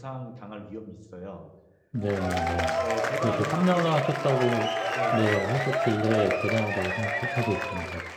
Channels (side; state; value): both; identical; correlation 1.00